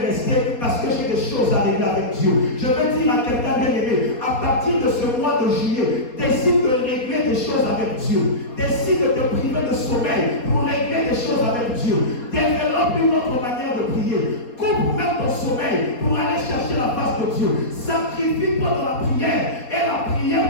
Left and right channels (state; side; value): late; right; 4.2 ms